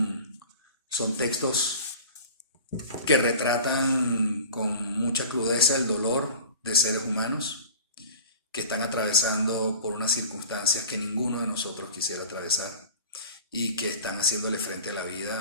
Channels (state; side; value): inverted; both; correlation -0.40